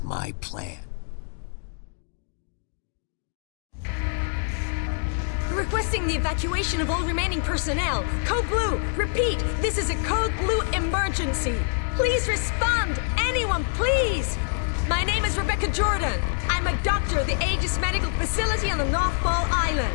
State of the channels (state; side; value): silent; right; digital silence